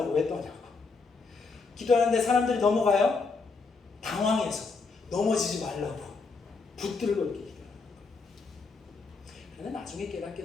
왜 떠냐고. 기도하는데 사람들이 넘어가요. 당황해서 넘어지지 말라고 붙들고 이렇게 기도하는 거예요. 그런데 나중에 깨닫게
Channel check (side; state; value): right; quieter; 4.4 dB